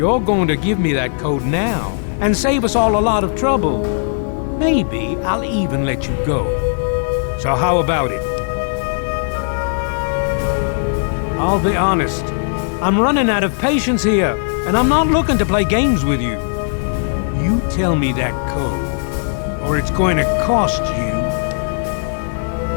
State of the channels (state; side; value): silent; right; 68 dB below the other